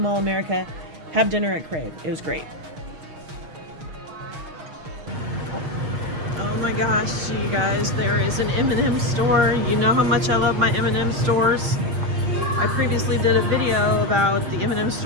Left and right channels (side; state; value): left; late; 6.4 ms